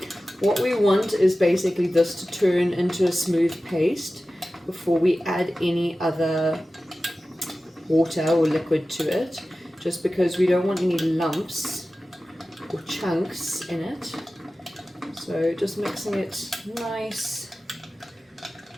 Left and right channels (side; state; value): both; normal; correlation 0.95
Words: what we want is basically this to turn into a smooth paste before we add any other water or liquid to it, just because we don't want any lumps or chunks in it. So just mixing it nicely